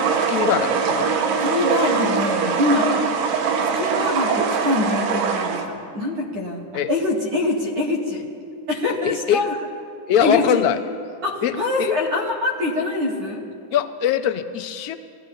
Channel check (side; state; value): left; late; 9.8 ms